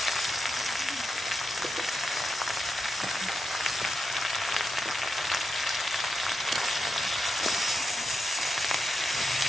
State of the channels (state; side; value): normal; both; correlation 0.87